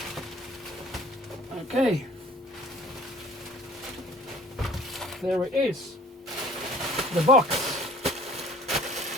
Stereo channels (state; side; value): normal; both; correlation 0.51